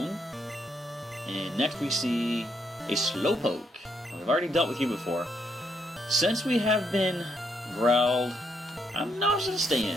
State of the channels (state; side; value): normal; both; correlation 0.76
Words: and next we see a Slowpoke. We've already dealt with you before. Since we have been growled, I'm not gonna stay in.